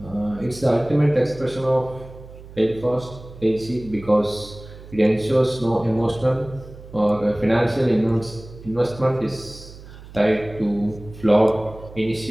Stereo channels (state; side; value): noise; right; hum, 17 dB below the sound